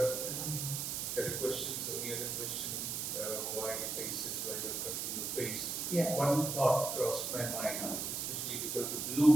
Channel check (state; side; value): noise; right; hiss, 2 dB below the sound